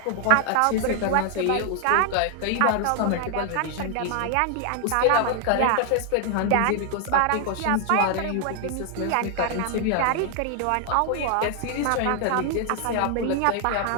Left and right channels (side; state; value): both; different; correlation 0.00